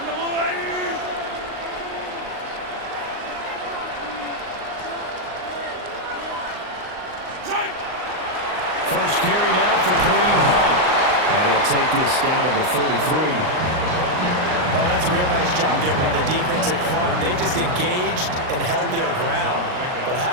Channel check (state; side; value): late; left; 39 ms